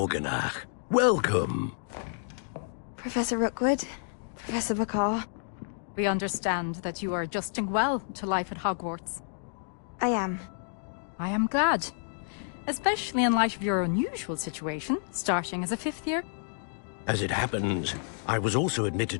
welcome. Professor Rookwood, Professor Bakar. We understand that you are adjusting well to life at Hogwarts. I am. I am glad. Especially in light of your unusual situation, starting as a 5th year. As it happens, I was also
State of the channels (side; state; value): right; silent; digital silence